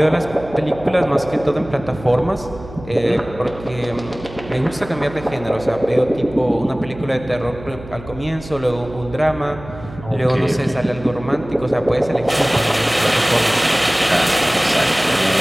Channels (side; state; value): right; noise; hum, 16 dB below the sound